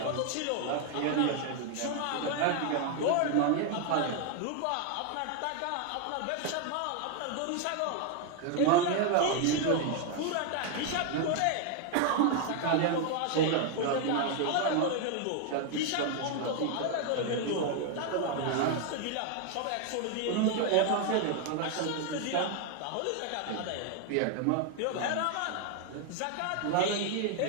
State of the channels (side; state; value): both; different; correlation 0.01